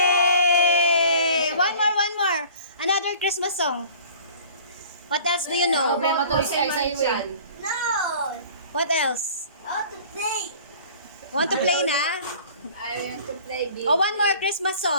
One more. Another Christmas song. What else do you know? Problema tuloy si Isa Iwi. No! What else? How to play? Want to play na? I want to play game. Oh, one more Christmas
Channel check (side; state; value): both; inverted; correlation -0.47